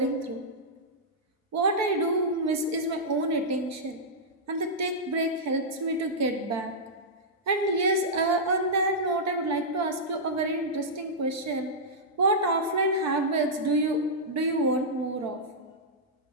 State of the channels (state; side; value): normal; both; correlation -0.11